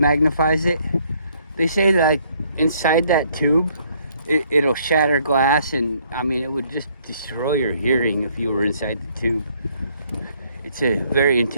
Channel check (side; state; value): both; inverted; correlation -0.66